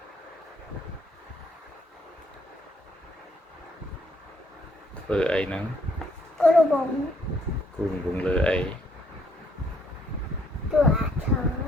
ធ្វើអីហ្នឹងគូរវងគូវងលើអីតួអក្សរ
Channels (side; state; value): both; normal; correlation 0.68